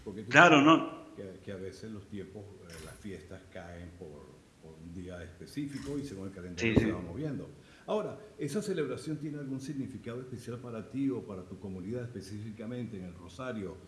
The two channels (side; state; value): both; identical; correlation 1.00